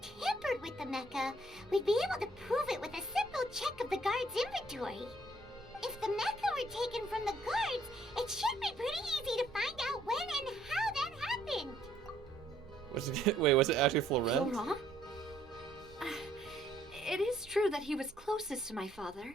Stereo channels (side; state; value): both; normal; correlation 0.65